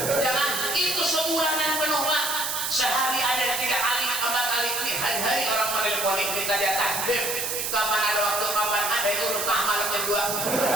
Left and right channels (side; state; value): right; noise; hiss, 1 dB below the sound